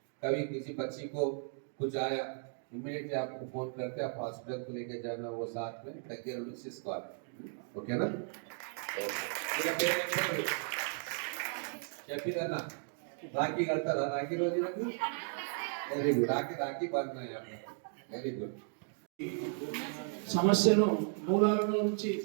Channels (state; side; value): silent; left; 54 dB below the other